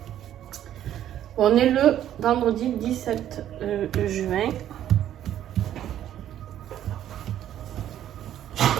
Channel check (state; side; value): quieter; left; 11.4 dB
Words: On est le vendredi 17 juin.